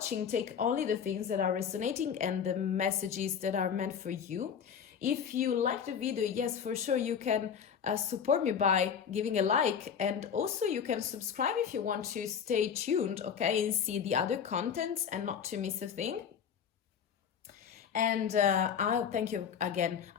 Take only the things that are resonating and the messages that are meant for you. If you like the video, yes, for sure, you can support me by giving a like, and also you can subscribe if you want to stay tuned, okay, and see the other contents and not to miss a thing. And I'll thank you again.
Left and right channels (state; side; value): quieter; right; 7.6 dB